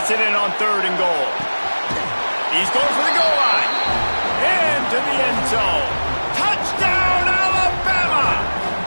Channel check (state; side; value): inverted; both; correlation -1.00